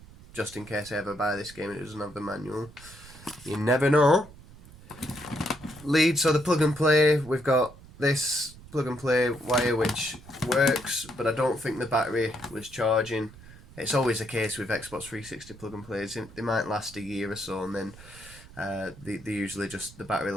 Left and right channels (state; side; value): noise; right; rumble, 20 dB below the sound